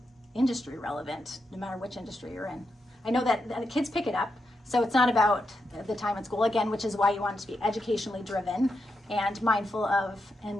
industry relevant, no matter which industry you're in. I know that the kids pick it up, so it's not about the time at school, again, which is why you want it to be educationally driven and mindful of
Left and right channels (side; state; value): both; normal; correlation 0.85